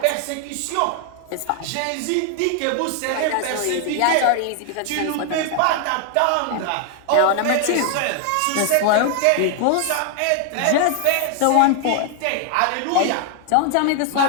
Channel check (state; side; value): different; both; correlation 0.00